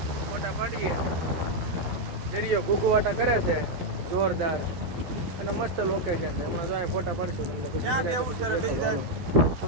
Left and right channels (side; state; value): left; late; 12 ms